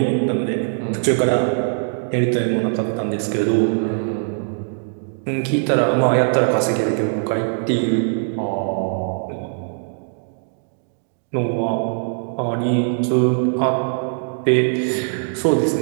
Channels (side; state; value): left; silent; digital silence